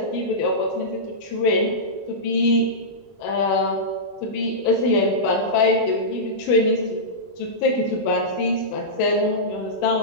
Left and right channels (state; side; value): late; right; 21 ms